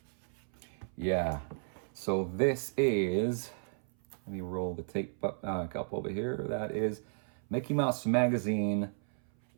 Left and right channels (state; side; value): silent; left; 55 dB below the other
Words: Yeah, so this is, let me roll the tape up over here. That is Mickey Mouse Magazine,